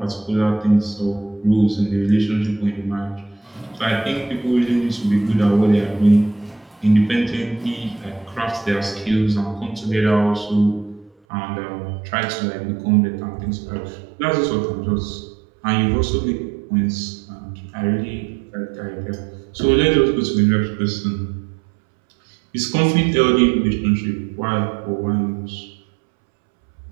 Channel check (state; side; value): drops out; left; at 11.1 s